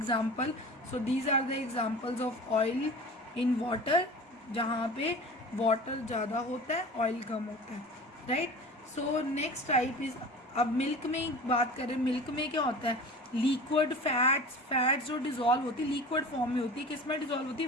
So these are the examples of oil in water, जहाँ पे वाटर ज़्यादा होता है, ऑयल कम होता है, right. So next type is, अब मिल्क में बात करें, मिल्क में क्या होता है, लिक्विड फैट्स जो डिज़ोल्व होती है लिक्विड फॉर्म में होती है, किस में डिज़ोल्व होती है,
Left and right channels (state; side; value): normal; both; correlation 0.37